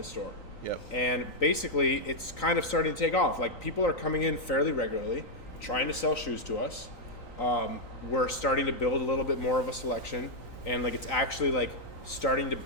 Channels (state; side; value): late; right; 3.9 ms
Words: store. Yep. And basically, it's kind of starting to take off. Like, people are coming in fairly regularly, trying to sell shoes to us. We're starting to build a little bit more of a selection, and like it's actually like starting to